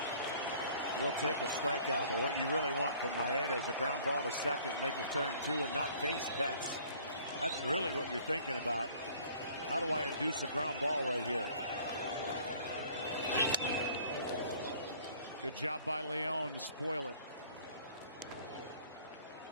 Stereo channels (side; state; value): both; inverted; correlation -0.54